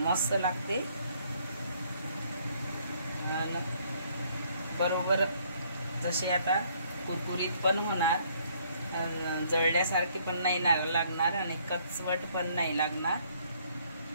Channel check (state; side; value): inverted; both; correlation -0.65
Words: लागते. बरोबर जसे आता कुरकुरीत पण होणार, जळल्यासारखे पण नाही लागणार आणि कचवट पण नाही लागणार.